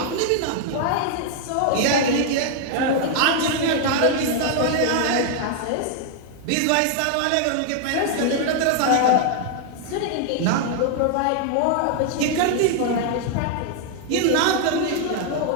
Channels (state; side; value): different; both; correlation 0.00